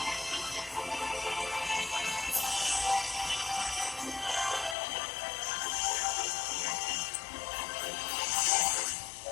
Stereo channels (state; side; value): drops out; right; at 4.8 s